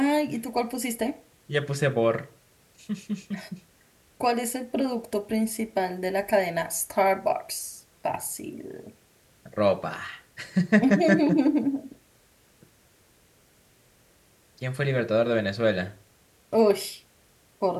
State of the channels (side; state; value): both; identical; correlation 1.00